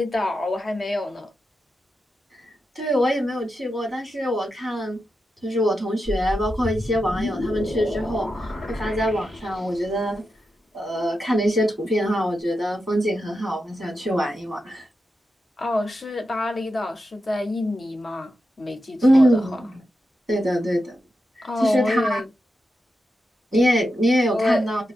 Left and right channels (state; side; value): normal; both; correlation 0.89